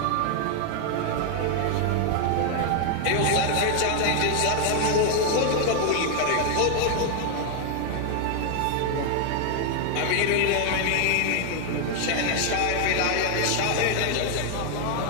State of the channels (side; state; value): both; different; correlation 0.00